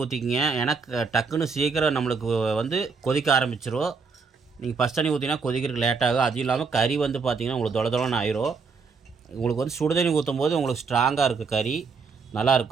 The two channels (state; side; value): quieter; left; 5.0 dB